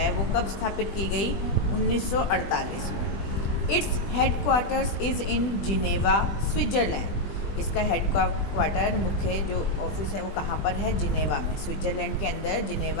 वो कब स्थापित की गई? 1948 में। It's headquarters is in Geneva, Switzerland. इसका हेडक्वार्टर, मुख्य जो ऑफिस है वो कहाँ पर है? जिनेवा में, स्विट्ज़रलैंड के अंदर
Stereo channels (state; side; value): late; right; 20 ms